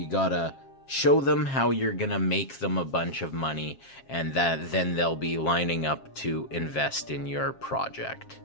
gotta show them how you're gonna make them a bunch of money, and then they'll be lining up to invest in your project.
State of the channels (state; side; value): late; right; 7.4 ms